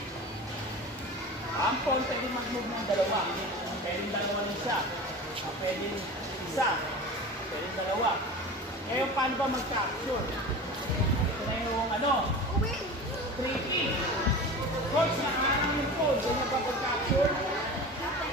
ang phone pwede mag-move ng dalawa. Pwede dalawa ng isa. Pwede isa. Pwede dalawa. Ngayon, paano ba mag-capture? Ito na yung 3P. Coach, nakaharang yung phone. Ganyan ba pag-capture?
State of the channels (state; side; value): normal; both; correlation 0.33